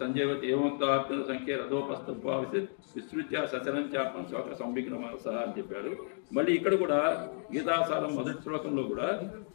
సంజయవతి ఏమంత సంఖ్య రథోపస్థ విస్తృత్య సచరంచాత్మ శోక సంవిఘ్నమాస అని చెప్పాడు. మళ్ళీ ఇక్కడ కూడా గీతాసారం మొదటి శ్లోకంలో కూడా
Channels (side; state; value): right; silent; 56 dB below the other